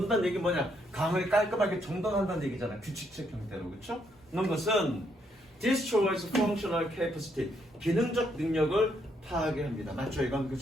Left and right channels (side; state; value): both; normal; correlation 0.74